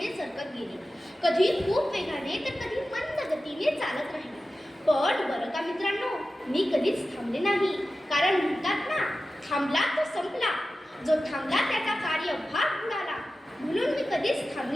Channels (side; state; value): both; normal; correlation 0.94